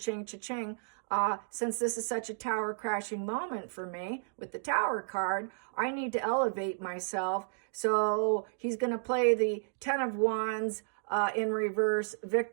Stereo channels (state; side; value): silent; left; digital silence